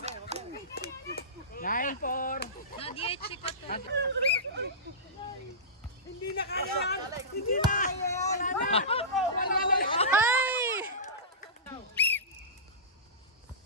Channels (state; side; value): normal; both; correlation -0.20